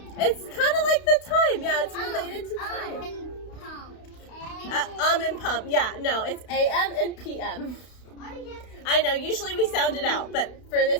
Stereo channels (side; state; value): right; late; 32 ms